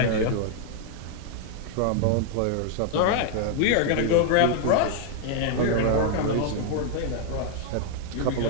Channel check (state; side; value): different; both; correlation 0.00